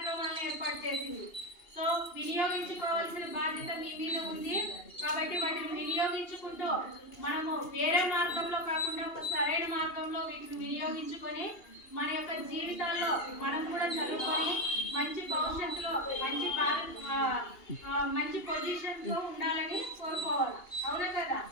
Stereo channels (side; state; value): right; late; 2.8 ms